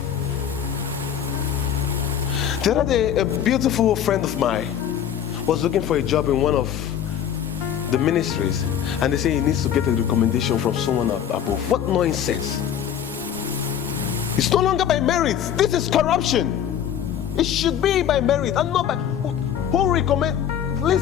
The other day, a beautiful friend of mine was looking for a job in one of the ministries, and they say he needs to get a recommendation from someone above. What nonsense! It's no longer by merit. This is corruption. It should be by merit and not by who recommend.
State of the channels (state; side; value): quieter; right; 9.4 dB